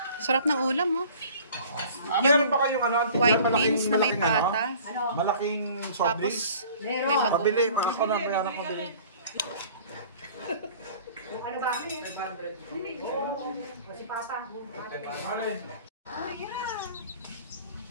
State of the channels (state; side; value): inverted; both; correlation -0.48